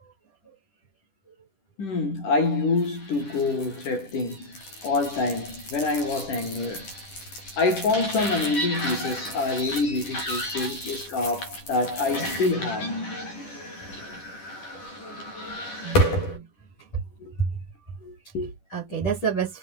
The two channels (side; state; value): right; late; 10 ms